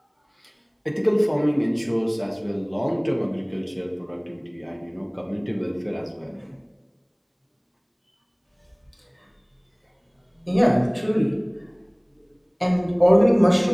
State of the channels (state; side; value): identical; both; correlation 1.00